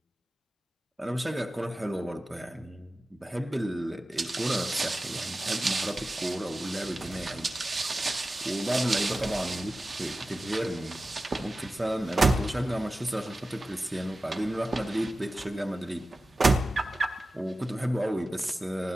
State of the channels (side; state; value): both; normal; correlation 0.95